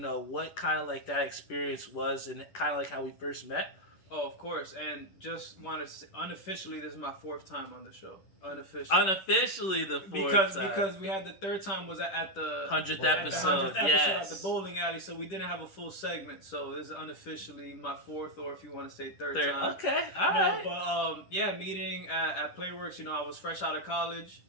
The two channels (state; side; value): late; right; 10 ms